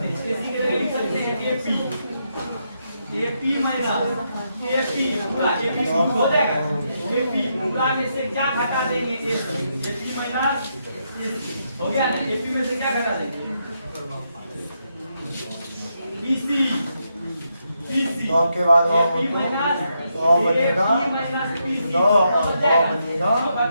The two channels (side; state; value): both; inverted; correlation -0.81